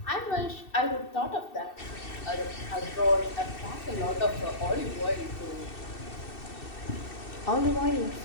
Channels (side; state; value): right; late; 2.7 ms